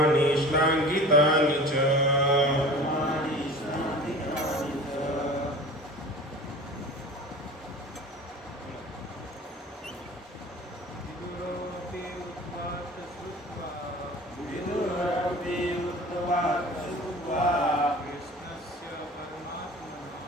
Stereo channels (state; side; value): normal; both; correlation 0.40